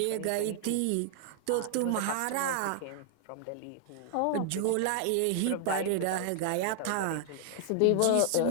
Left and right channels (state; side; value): different; both; correlation 0.00